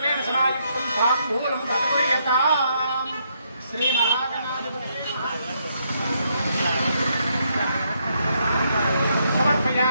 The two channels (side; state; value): both; inverted; correlation -0.75